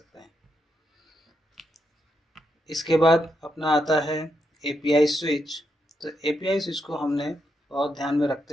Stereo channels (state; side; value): normal; both; correlation 0.82